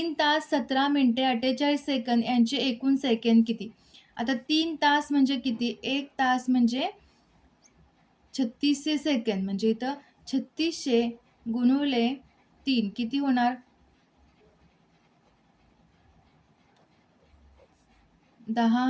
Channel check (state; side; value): identical; both; correlation 1.00